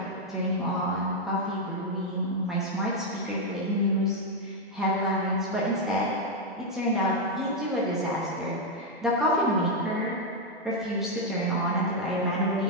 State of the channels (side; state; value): both; normal; correlation 0.00